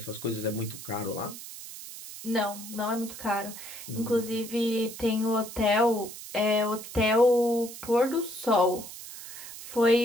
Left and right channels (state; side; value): noise; right; hiss, 12 dB below the sound